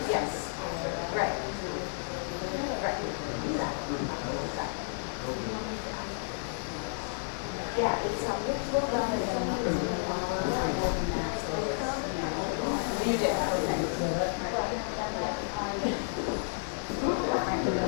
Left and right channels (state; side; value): silent; right; digital silence